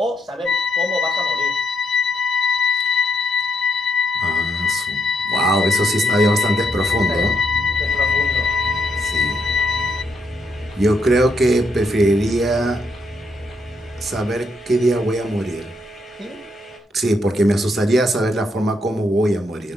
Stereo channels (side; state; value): both; normal; correlation 0.75